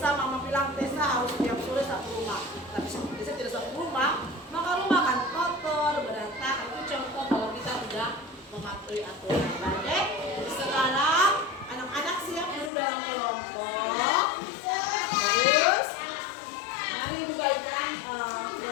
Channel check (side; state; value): right; drops out; at 12.7 s